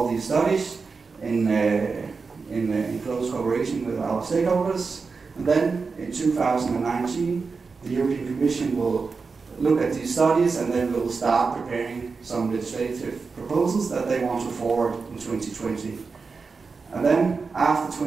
these studies in close cooperation with our stakeholders. And then in 2019, the European Commission will look at these studies, and then we'll start preparing some legislative proposals that they want to forward in 2020. And then after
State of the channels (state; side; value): quieter; left; 4.7 dB